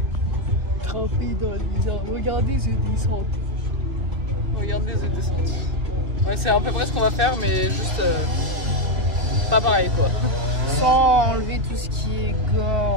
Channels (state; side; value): late; left; 2.5 ms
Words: Trempé dans l'hiver. Regardez ce descente. Regardez ce descente. Ouais, c'est à peu près ce qu'on va faire, mais juste pas pareil quoi. Sans enlever tout ce qui est